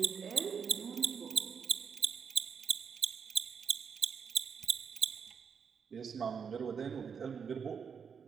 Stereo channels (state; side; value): quieter; left; 6.5 dB